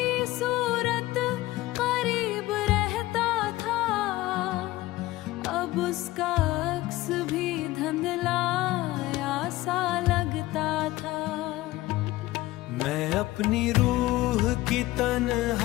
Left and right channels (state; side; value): quieter; right; 17.9 dB